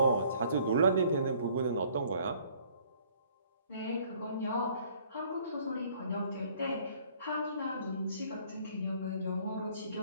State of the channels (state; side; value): inverted; both; correlation -0.58